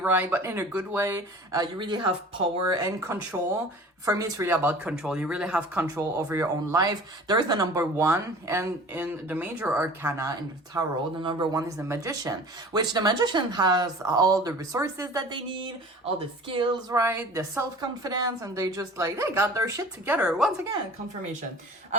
But in a good way. You really have power and control. For me, it's really about control. You really have control over your own life. There's the number one. And in the major arcana in the tarot, the number one is the magician. Which the magician has all the resources that they need, all the skills, right? The self-confidence. And they just like, they got their shit together. Once again, confirmation.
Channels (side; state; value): both; normal; correlation 0.43